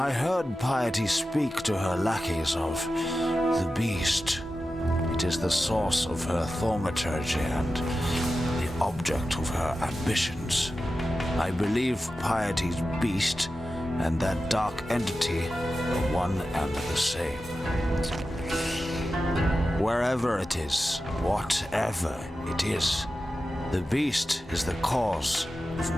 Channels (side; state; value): both; normal; correlation 0.93